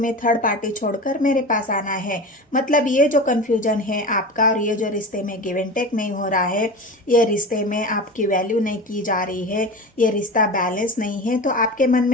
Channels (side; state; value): both; normal; correlation 0.30